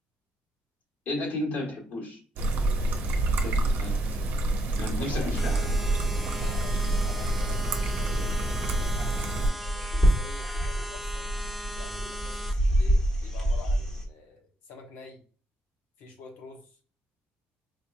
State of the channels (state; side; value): normal; both; correlation 0.77